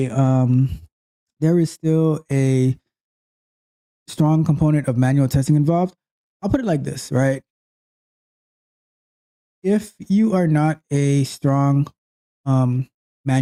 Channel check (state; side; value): identical; both; correlation 1.00